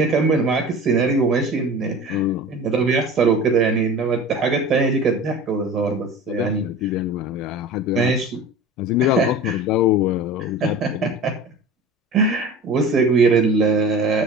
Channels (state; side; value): normal; both; correlation 0.36